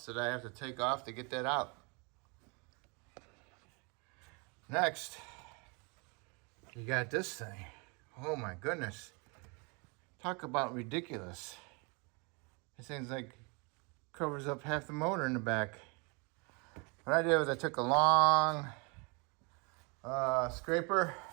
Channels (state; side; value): quieter; left; 31.5 dB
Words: that I have to take off to get that out. Next, you got this thing. Oh my goodness. Talk about ridiculous. This thing's like covers up half the motor in the back. What I did was I took a long scraper,